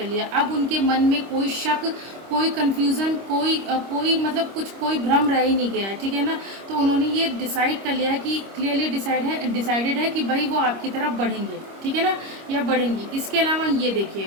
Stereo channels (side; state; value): left; late; 26 ms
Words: लिया। अब उनके मन में कोई शक, कोई कन्फ्यूज़न, कोई मतलब कोई भ्रम रह ही नहीं गया है, ठीक है ना। तो उन्होंने ये डिसाइड कर लिया है कि क्लियरली डिसाइडेड है कि भाई वो आपकी तरफ बढ़ेंगे, ठीक है ना, या बढ़ेंगी। इसके अलावा ये